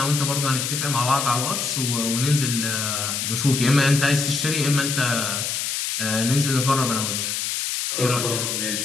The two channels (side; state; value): left; noise; hiss, 1 dB below the sound